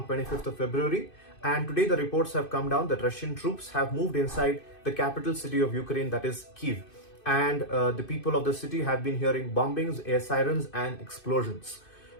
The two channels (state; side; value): late; right; 2.6 ms